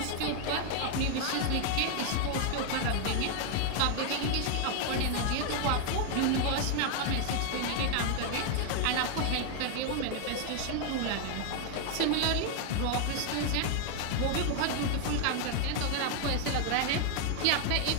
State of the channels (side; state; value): both; different; correlation 0.00